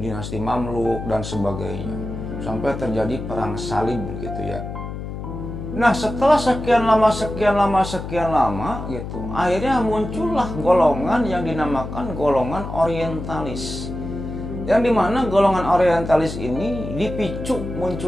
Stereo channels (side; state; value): left; noise; hum, 7 dB below the sound